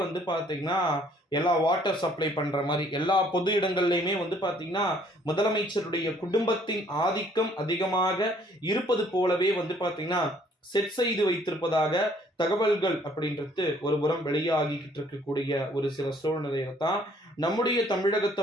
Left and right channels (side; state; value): both; normal; correlation 0.61